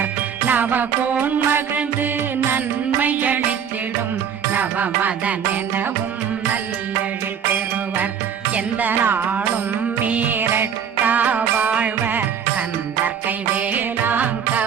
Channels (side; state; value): left; quieter; 7.7 dB